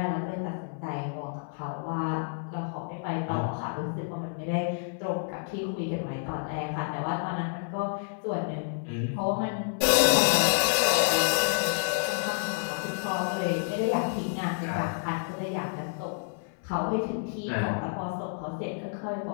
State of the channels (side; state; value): right; silent; 57 dB below the other